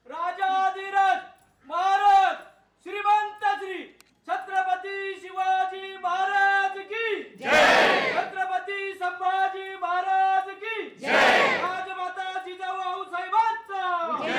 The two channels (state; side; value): identical; both; correlation 1.00